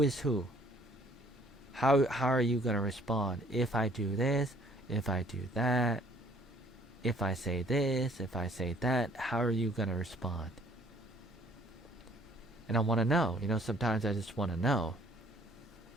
is who. How are you gonna respond if I do this, if I do that, if I say this, if I say that? How are you gonna respond? And I want to know. Sometimes I just want to know.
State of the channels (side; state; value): both; normal; correlation 0.59